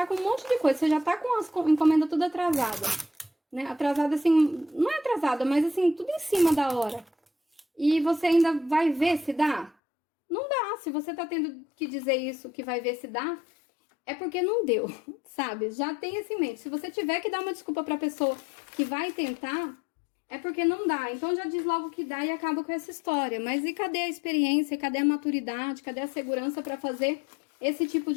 com um monte de coisa, você já tá com as encomendas tudo atrasada, né? Atrasada assim, não é atrasada, mas assim, tudo em cima da hora. E você ainda vai ver se dá? Não dá. Se você tá tendo que dizer isso, que vai ver se dá, é porque não deu, sabe? Já tem isso em mente. Se você tiver que dar uma desculpa pra pessoa que vai tentar, é porque não dá. Então já diz logo que dá e acaba com essa história. Mas e cadê a experiência? Cadê a maturidade? Cadê a segurança pra fazer esse tipo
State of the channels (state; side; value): drops out; right; at 9.7 s